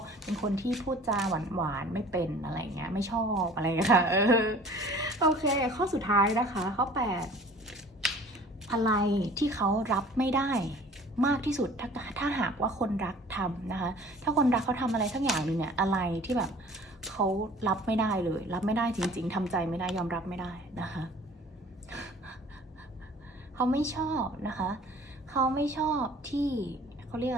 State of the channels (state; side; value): normal; both; correlation 0.48